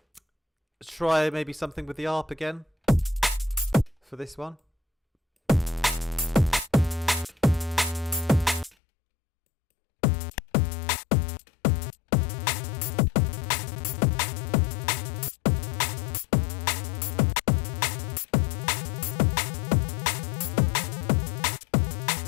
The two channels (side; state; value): right; drops out; at 8.8 s